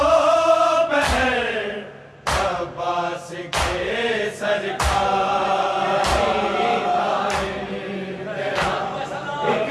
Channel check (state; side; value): identical; both; correlation 1.00